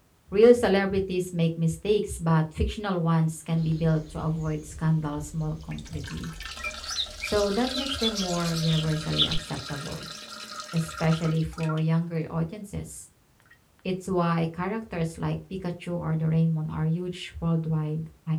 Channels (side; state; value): both; identical; correlation 1.00